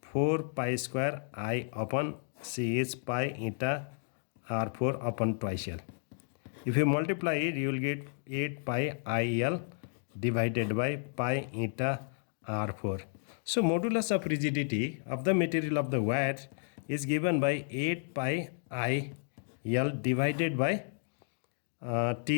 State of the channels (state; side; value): silent; right; digital silence